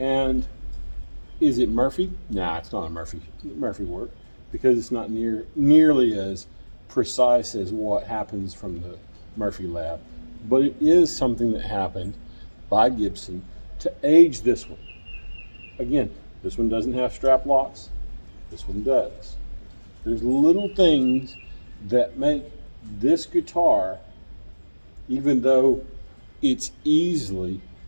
is it Murphy? Nah, it's not a Murphy work, because it's not nearly as precise as what happens from the Murphy lab. But it is something that happened by Gibson to age this one. Again, this one doesn't have strap locks. This one does. There's little things that make this guitar, even though it's easily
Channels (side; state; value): both; inverted; correlation -1.00